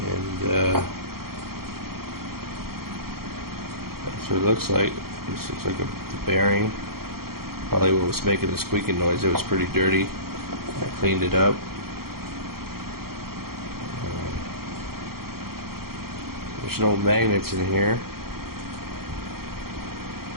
that's what it looks like. This looks like the bearing, probably what was making the squeaking noise. It was pretty dirty. I cleaned it up. There's no magnets in here.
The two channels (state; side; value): late; left; 0.94 ms